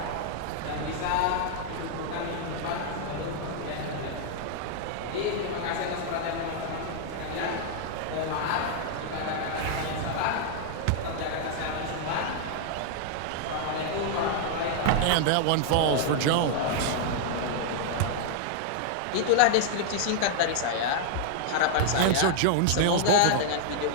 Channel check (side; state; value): both; different; correlation -0.01